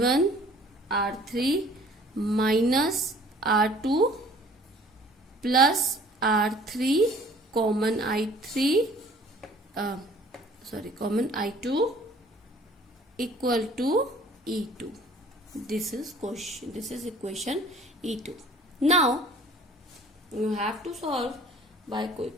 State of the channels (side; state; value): both; normal; correlation 0.52